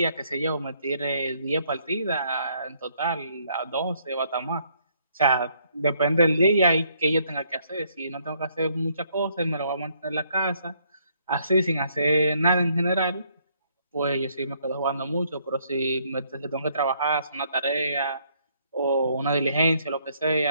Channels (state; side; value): inverted; both; correlation -0.69